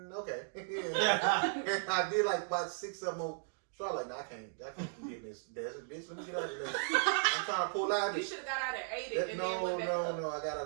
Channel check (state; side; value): silent; left; digital silence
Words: okay. And I did like about 6 of them more. So I was like, nah, I can't keep getting this desert, bitch. Let me get out of here. I'm trying to pull out You this. should have got out at 80 and then went back up. No, I got